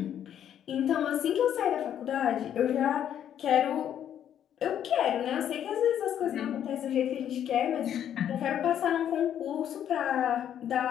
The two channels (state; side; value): quieter; right; 9.9 dB